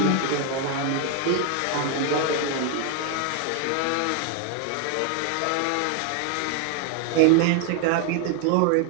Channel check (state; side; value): different; both; correlation 0.00